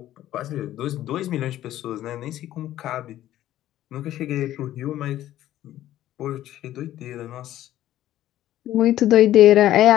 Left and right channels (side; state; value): right; quieter; 13.4 dB